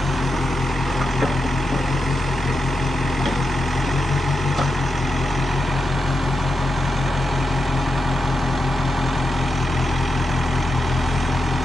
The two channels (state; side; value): normal; both; correlation 0.88